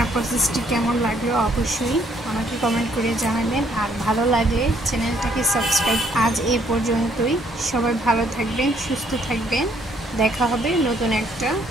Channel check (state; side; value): normal; both; correlation 0.67